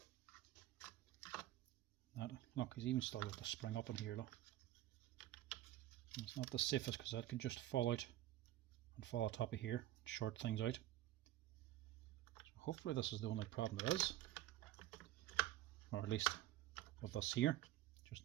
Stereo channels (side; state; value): left; quieter; 14.3 dB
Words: That, look, he's even still got the spring up in here, look. And it's not the safest because that could just fall out and fall on top of here, short things out. So hopefully this is the only problem there is. Or at least with this here. Just